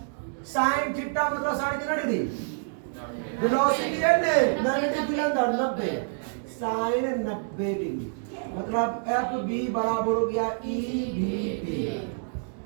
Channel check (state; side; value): silent; left; 60 dB below the other